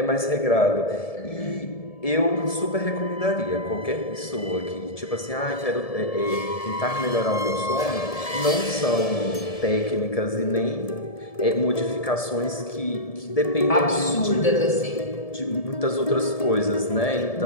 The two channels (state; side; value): late; right; 1.7 ms